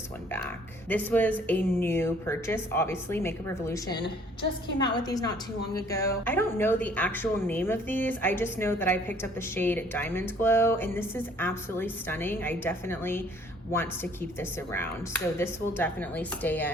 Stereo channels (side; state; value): both; normal; correlation 0.58